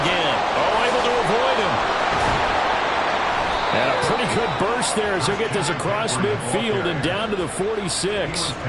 again. Oh, able to avoid him. And a pretty good burst there as he'll get this across midfield and down to the 46.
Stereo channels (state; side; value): identical; both; correlation 1.00